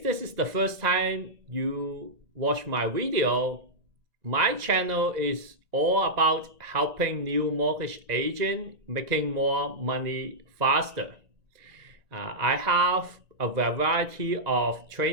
this is the first time you watch my video, my channel is all about helping new mortgage agent making more money faster. I have a variety of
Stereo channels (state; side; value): late; left; 1.9 ms